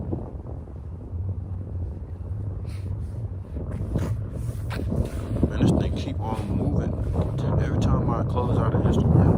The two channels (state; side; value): identical; both; correlation 1.00